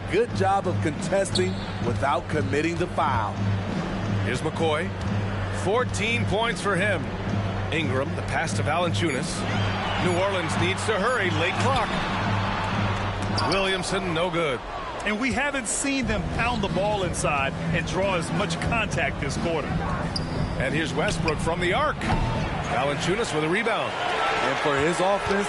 good job of contesting without committing the foul. Here's McCoy. 14 points for him. Ingram, the pass to Valanciunas. New Orleans needs to hurry. Late clock. Williamson, no good. And we haven't seen them pound the ball inside and draw as much contact this quarter. And here's Westbrook from the arc. Valanciunas with a rebound. And for his offense,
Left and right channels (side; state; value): both; identical; correlation 1.00